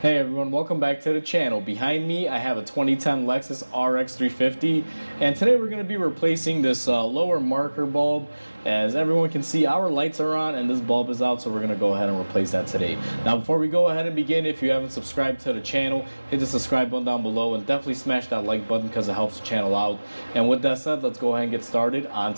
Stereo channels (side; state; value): both; inverted; correlation -1.00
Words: Hey everyone, welcome back to the channel. Behind me I have a 2010 Lexus RX350, and today we're going to be replacing this lower marker bulb. As everyone can see, our lights are on and this bulb is out, so we're going to go ahead and replace that today. Now before we go ahead and begin, if you haven't subscribed to the channel, hit the subscribe button down below and definitely smash that like button because it helps the channel out. And with that said, let's go ahead and get started on